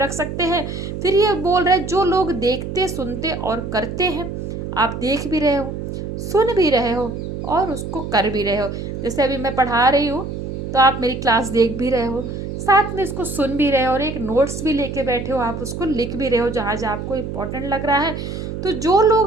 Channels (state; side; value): noise; right; hum, 6 dB below the sound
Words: सकते हैं। फिर ये बोल रहे हैं जो लोग देखते, सुनते और करते हैं, आप देख भी रहे हो, सुन भी रहे हो और उसको कर भी रहे हो। जैसे अभी मैं पढ़ा रही हूँ तो आप मेरी क्लास देख भी रहे हो, साथ में इसको सुन भी रहे हो, और एक नोट्स भी लेके बैठे हो, आप उसको लिख भी रहे हो जहाँ जहाँ आपको इम्पोर्टेंट लग रहा है। तो जो